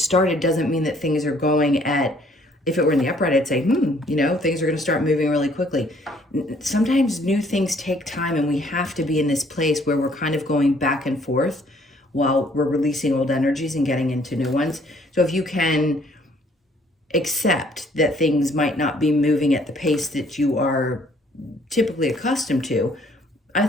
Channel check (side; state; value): both; normal; correlation 0.62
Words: doesn't mean that things are going at, if it were in the upright, I'd say, things are going to start moving really quickly. Sometimes new things take time, and we have to be in this place where we're kind of going back and forth while we're releasing old energies and getting into new ones. So if you can accept that things might not be moving at the pace that you are typically accustomed to, I